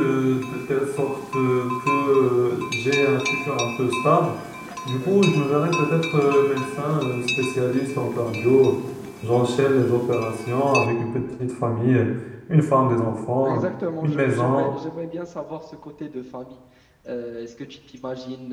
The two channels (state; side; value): identical; both; correlation 1.00